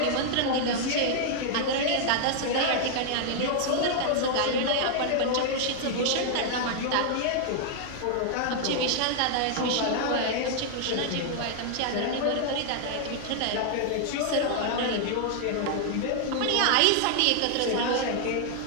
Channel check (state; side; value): different; both; correlation 0.00